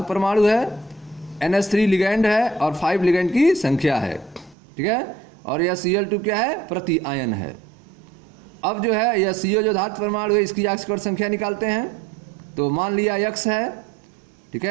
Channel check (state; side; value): drops out; left; at 4.5 s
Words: परमाणु है, NH3 लिगैंड है, और 5 लिगैंड की संख्या है, ठीक है। और यह Cl2 क्या है, प्रति आयन है। अब जो है यह CO जो धातु परमाणु है, इसकी ऑक्सीकरण संख्या निकालते हैं। तो मान लिया X है, ठीक